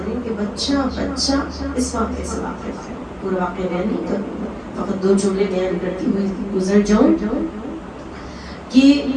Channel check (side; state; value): both; identical; correlation 1.00